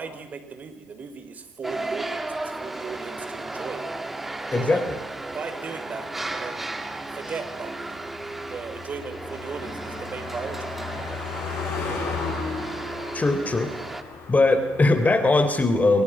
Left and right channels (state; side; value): normal; both; correlation 0.84